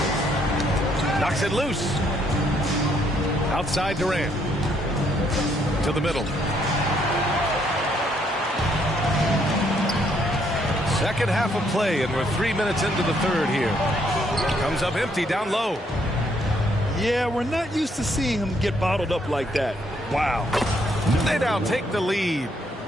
Knocks it loose. Outside Durant. To the middle. Second half of play, and we're 3 minutes into the third here. Comes up empty down low. Yeah, we're not used to seeing him get bottled up like that. Wow. They now take the lead.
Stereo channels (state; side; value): normal; both; correlation 0.70